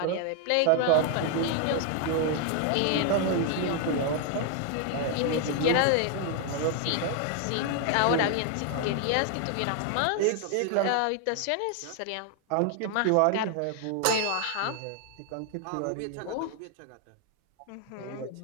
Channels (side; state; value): both; different; correlation 0.00